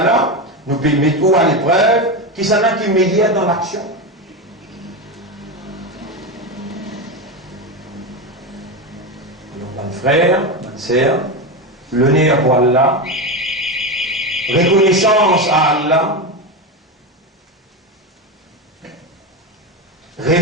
nous pouvons mettre tout à l'épreuve, qui s'en a qui médiate dans l'action. Donc, mon frère, ma sœur, l'honneur pour Allah, reconnaissance à Allah,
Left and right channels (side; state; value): both; normal; correlation 0.16